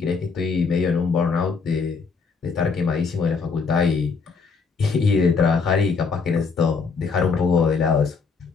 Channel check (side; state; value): right; quieter; 5.0 dB